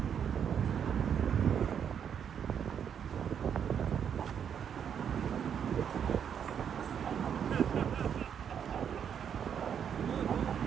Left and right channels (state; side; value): quieter; left; 8.1 dB